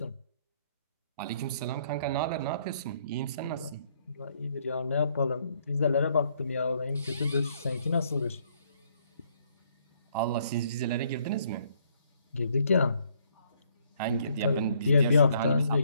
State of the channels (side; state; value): both; inverted; correlation -0.67